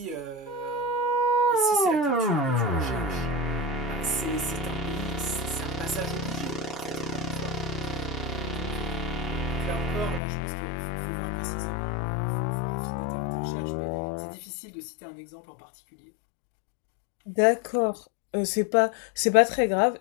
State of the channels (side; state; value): right; drops out; at 10.2 s